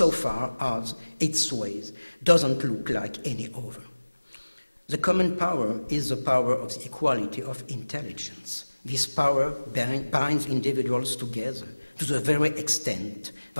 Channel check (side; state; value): both; inverted; correlation -1.00